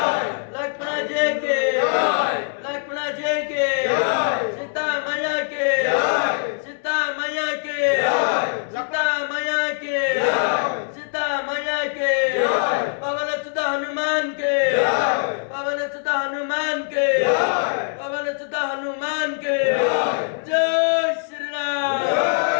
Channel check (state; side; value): silent; right; 63 dB below the other